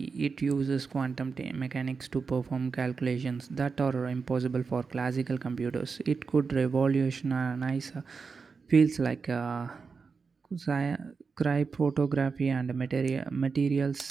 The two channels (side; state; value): left; quieter; 5.0 dB